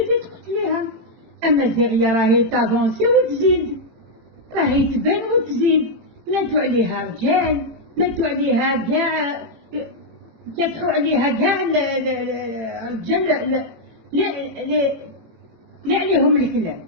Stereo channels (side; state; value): left; late; 18 ms